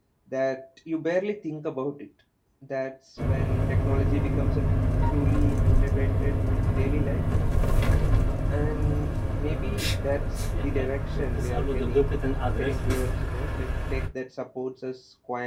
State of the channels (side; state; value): both; identical; correlation 1.00